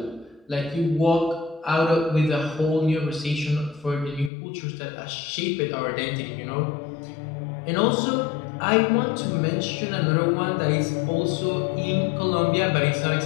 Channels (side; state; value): right; drops out; at 4.3 s